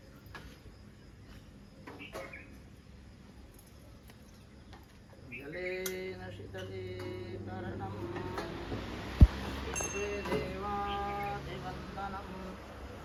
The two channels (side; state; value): both; identical; correlation 1.00